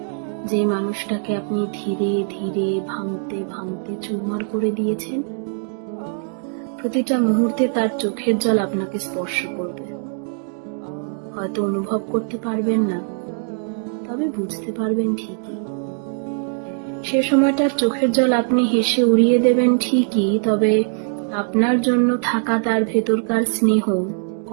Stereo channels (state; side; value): silent; left; 65 dB below the other